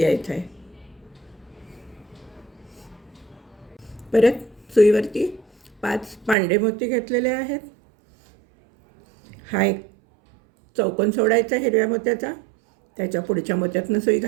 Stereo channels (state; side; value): drops out; left; at 6.4 s